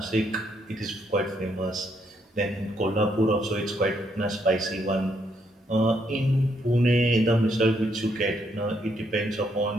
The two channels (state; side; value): normal; both; correlation 0.74